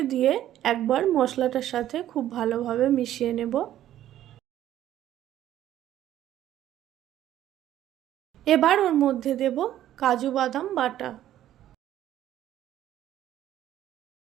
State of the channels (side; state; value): left; quieter; 12.4 dB